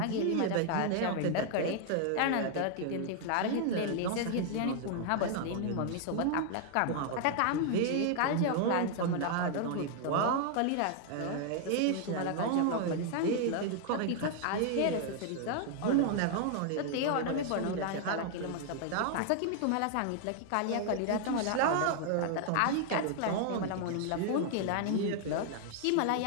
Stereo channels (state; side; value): different; both; correlation 0.00